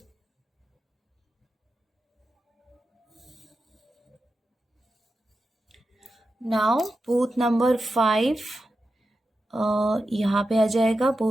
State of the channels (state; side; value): normal; both; correlation 0.90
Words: नाउ बूथ नंबर 5 यहाँ पे आ जाएगा